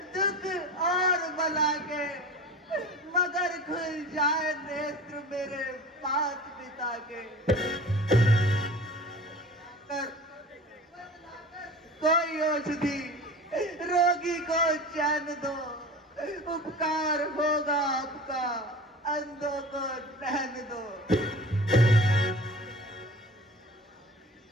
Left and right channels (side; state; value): both; normal; correlation 0.38